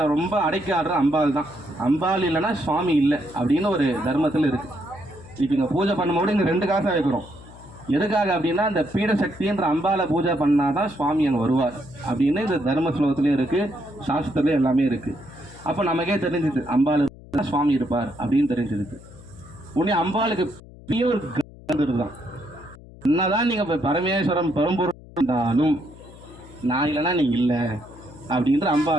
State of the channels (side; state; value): left; noise; hum, 19 dB below the sound